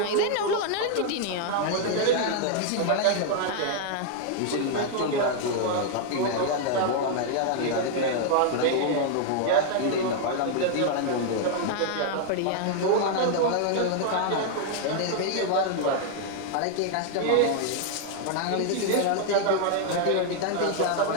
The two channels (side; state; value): both; different; correlation 0.00